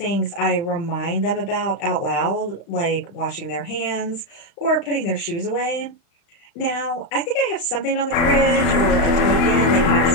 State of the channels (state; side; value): late; right; 35 ms